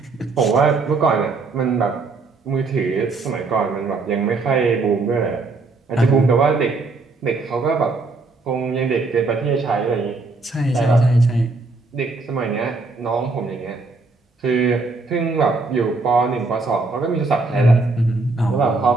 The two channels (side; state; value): left; quieter; 3.7 dB